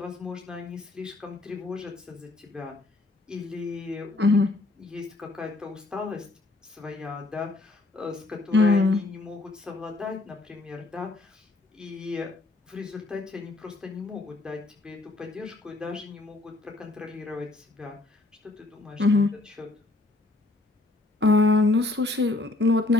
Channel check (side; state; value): right; quieter; 3.0 dB